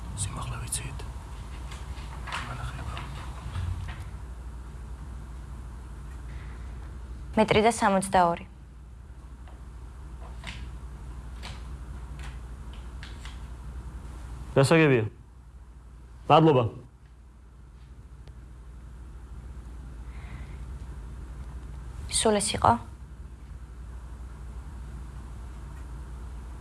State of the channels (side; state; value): both; identical; correlation 1.00